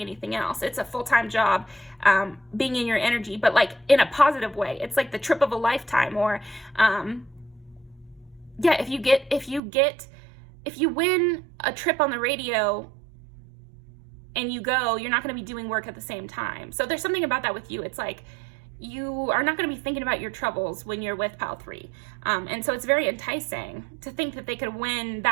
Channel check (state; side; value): drops out; left; at 9.6 s